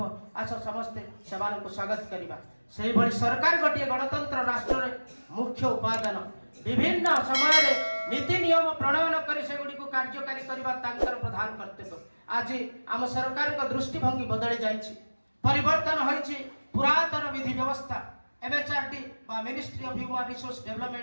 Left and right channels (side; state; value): both; inverted; correlation -1.00